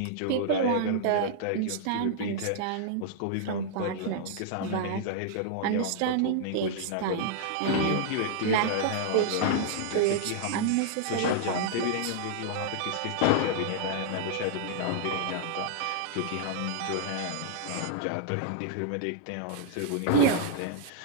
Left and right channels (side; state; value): both; different; correlation -0.01